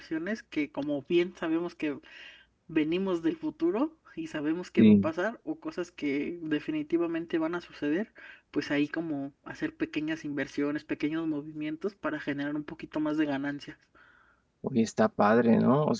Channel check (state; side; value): identical; both; correlation 1.00